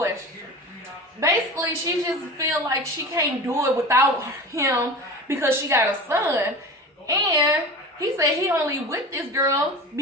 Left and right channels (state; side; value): normal; both; correlation 0.33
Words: Basically, she just feel like she can't do it without him because she got a son. And he said he only with this girl